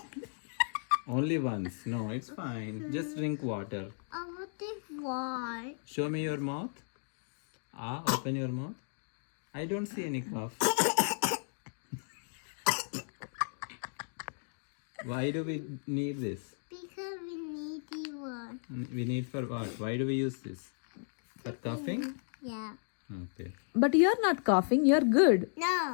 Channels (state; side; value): silent; right; digital silence